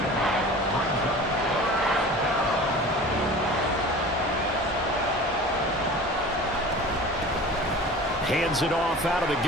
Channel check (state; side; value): normal; both; correlation 0.39